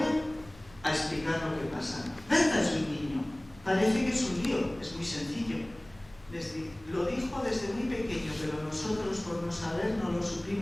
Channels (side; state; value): left; noise; rumble, 24 dB below the sound